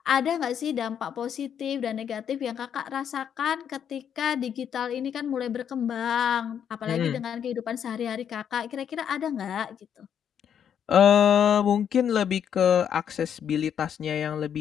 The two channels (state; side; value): quieter; right; 8.6 dB